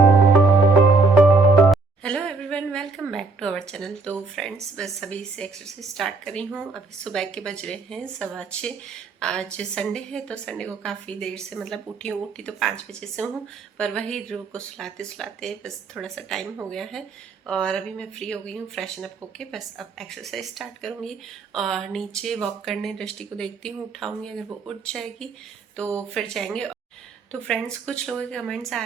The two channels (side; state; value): left; quieter; 4.0 dB